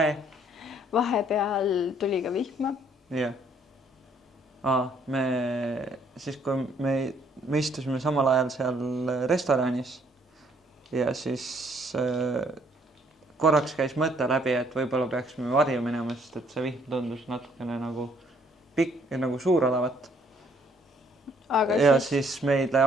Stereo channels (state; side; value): normal; both; correlation 0.65